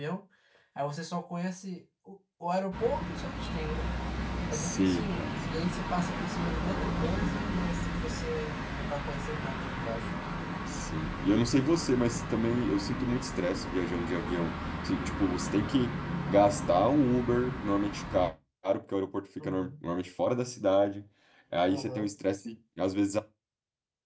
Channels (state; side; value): identical; both; correlation 1.00